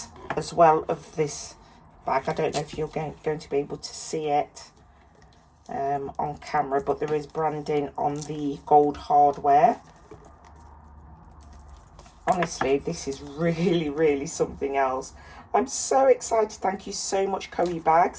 as well of this bag. I don't know if you're going to be able to see it on camera, but there is branding on the gold hardware. Honestly, this is really, really something else. I'm so excited. Thank you so much, Coee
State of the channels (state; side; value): identical; both; correlation 1.00